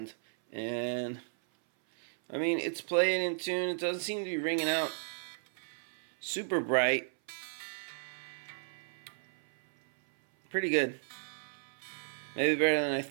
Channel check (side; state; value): left; silent; 55 dB below the other